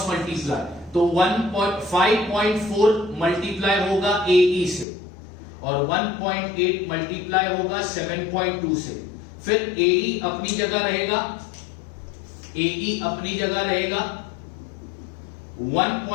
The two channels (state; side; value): drops out; right; at 4.9 s